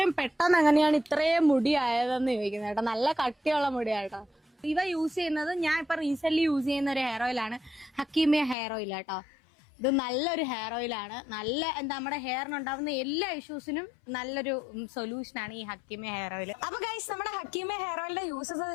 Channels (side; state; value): right; drops out; at 8.6 s